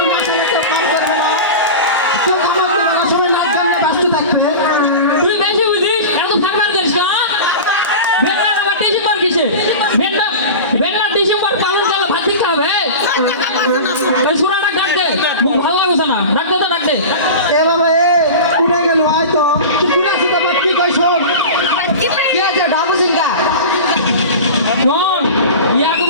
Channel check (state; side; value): inverted; both; correlation -0.30